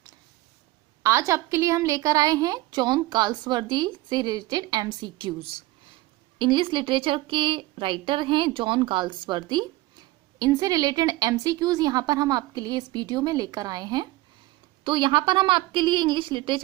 आज आपके लिए हम लेकर आए हैं जॉन गाल्सवर्दी से रिलेटेड एमसीक्यूज। इंग्लिश लिटरेचर के राइटर हैं जॉन गाल्सवर्दी। इनसे रिलेटेड एमसीक्यूज यहाँ पर हम आपके लिए इस वीडियो में लेकर आए हैं। तो यहाँ पर हम आपके लिए इंग्लिश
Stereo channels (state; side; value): quieter; left; 18.7 dB